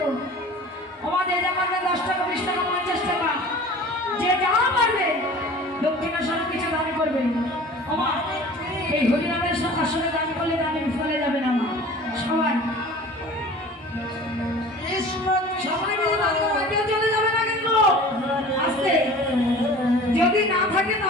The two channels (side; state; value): both; normal; correlation 0.42